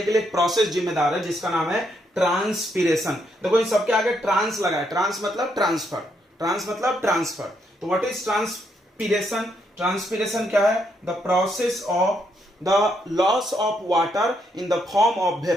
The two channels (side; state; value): both; normal; correlation 0.76